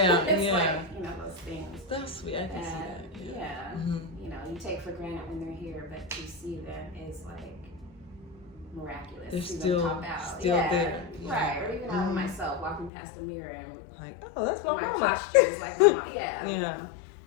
it's yeah. like, you know, those things. That's sweet. I can see that. Yeah. You know, you take for granted when they're here, but to see them is like miraculous. They're see still, them pop out. still there. Right. Or even I myself walking past the mirror and like, oh, that's what my my posture is like. My mom. Yeah. Yeah. You know?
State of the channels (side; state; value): right; drops out; at 12.9 s